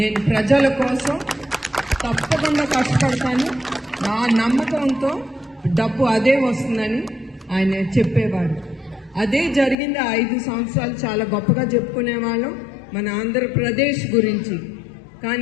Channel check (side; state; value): right; drops out; at 9.8 s